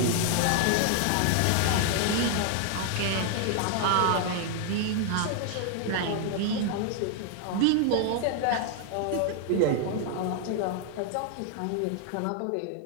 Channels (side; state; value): both; different; correlation 0.00